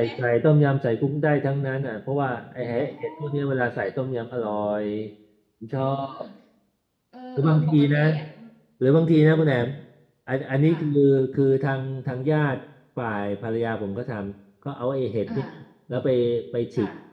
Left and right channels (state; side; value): identical; both; correlation 1.00